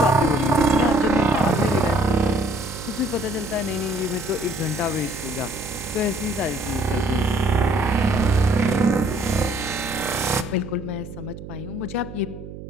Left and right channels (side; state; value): right; noise; hum, 12 dB below the sound